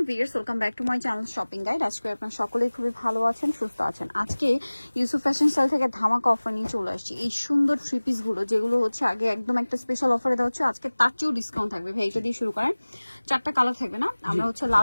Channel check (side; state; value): both; inverted; correlation -1.00